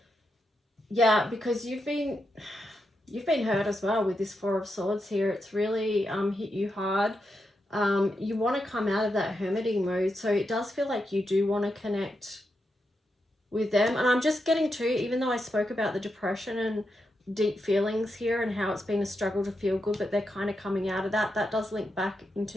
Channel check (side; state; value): both; normal; correlation 0.85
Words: Yeah, because you've been hurt as well with this Four of Swords here. It's really hit you hard. You want to come out of that hermiting mode. So it does feel like you do want to connect with them. And I'm just getting to, even though I spoke about the depression and deep feelings here and how it's been a struggle to feel good, but they're kind of coming out of that. That does link back